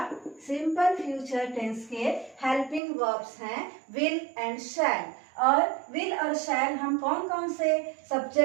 सिंपल फ्यूचर टेंस के हेल्पिंग वर्ब्स हैं विल एंड शैल। और विल और शैल हम कौन कौन से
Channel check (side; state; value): left; drops out; at 2.8 s